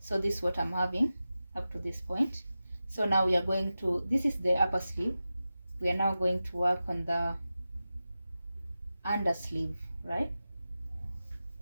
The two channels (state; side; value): inverted; both; correlation -0.93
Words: this is what I'm having up to this point. So now we are going to, this is the upper sleeve, we are now going to work on the under sleeve, right?